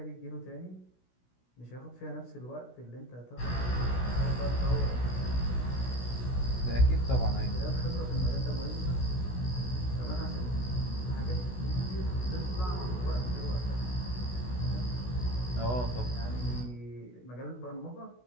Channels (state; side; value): late; right; 16 ms